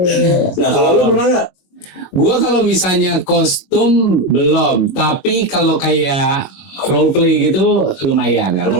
Nah, kalau lu pernah nggak? Gua kalau misalnya kostum belum, tapi kalau kayak role play gitu lumayan kan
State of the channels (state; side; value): late; right; 22 ms